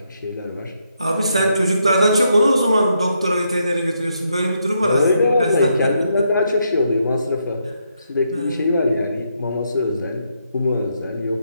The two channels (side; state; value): both; inverted; correlation -0.78